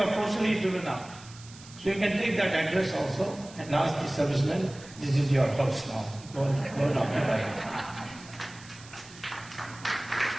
forcibly driven out. So you can take that address also and ask the servicemen, this is your house now, go and occupy it.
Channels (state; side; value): noise; right; hiss, 19 dB below the sound